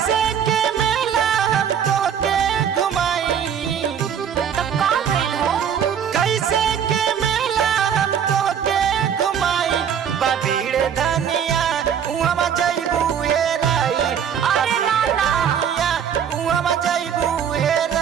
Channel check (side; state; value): left; quieter; 8.3 dB